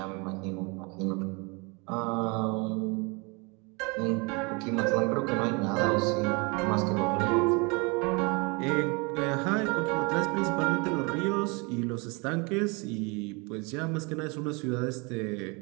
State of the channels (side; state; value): left; quieter; 29.7 dB